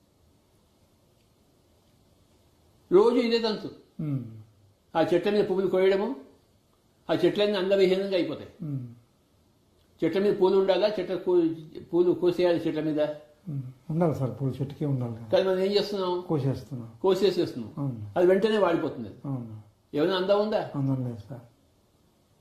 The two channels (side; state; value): both; identical; correlation 1.00